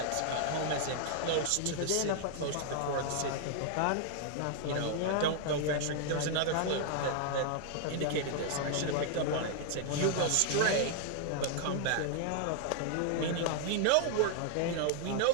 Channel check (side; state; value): both; different; correlation 0.00